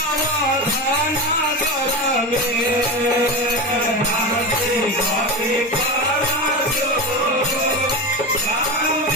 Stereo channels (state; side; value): normal; both; correlation 0.21